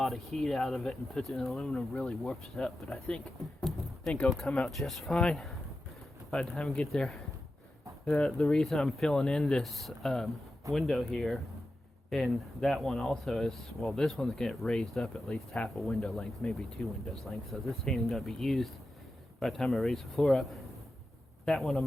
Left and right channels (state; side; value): normal; both; correlation 0.91